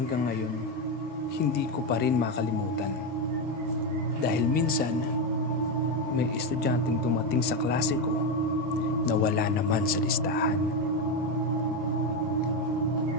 ngayon, hindi ko pa rin makalimutan. Dahil minsan, may estudyanteng dumating sa klase ko na wala naman sa listahan.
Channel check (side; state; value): both; normal; correlation 0.10